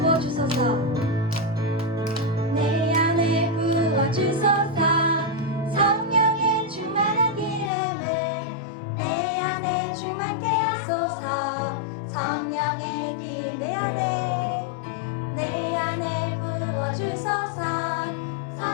내 안에 부어주소서. 성령의 충만한 기름을 내 안에 충만케 하소서. 성령의 길 내 안에 부어주소서.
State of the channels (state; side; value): drops out; right; at 7.7 s